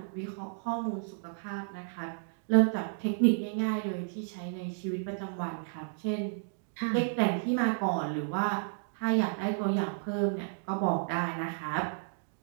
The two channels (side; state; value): left; silent; digital silence